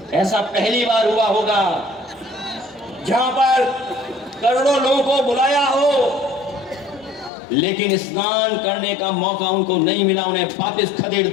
ऐसा पहली बार हुआ होगा जहां पर करोड़ों लोगों को बुलाया हो, लेकिन स्नान करने का मौका उनको नहीं मिला, उन्हें वापस खदेड़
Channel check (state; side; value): drops out; right; at 7.3 s